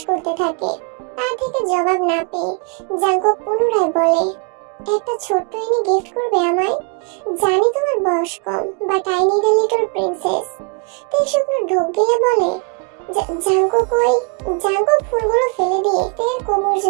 করতে থাকে। তার থেকে জবাব না পেয়ে জাঙ্কুক পুনরায় বলে, একটা ছোট্ট এনে গিফট করবে আমায়? জানি তোমার বয়স কম, but I need a little princess. তে শুকনো ঢোক গিলে বলে, জাঙ্কুক কই? জাঙ্কুক ফুলগুলো ফেলে দিয়ে তের কোমর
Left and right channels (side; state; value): left; quieter; 35.4 dB